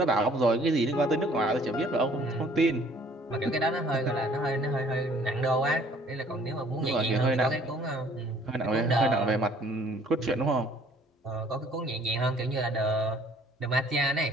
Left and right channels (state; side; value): normal; both; correlation 0.57